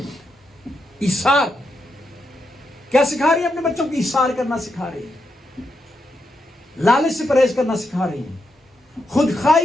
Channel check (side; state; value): both; normal; correlation 0.83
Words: ایثار کیا سکھا رہی ہے؟ اپنے بچوں کو ایثار کرنا سکھا رہی ہے، لالچ سے پرہیز کرنا سکھا رہی ہیں، خود